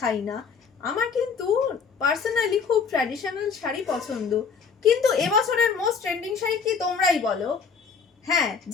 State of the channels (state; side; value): quieter; right; 5.7 dB